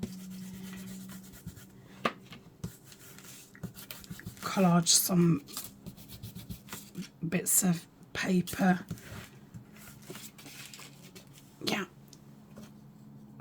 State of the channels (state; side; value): identical; both; correlation 1.00